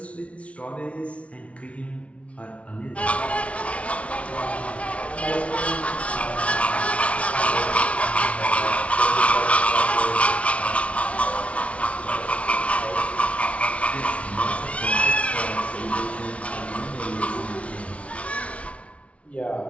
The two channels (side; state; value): right; late; 0.063 ms